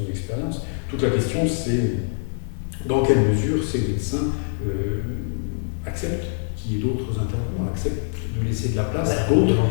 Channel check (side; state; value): right; silent; 63 dB below the other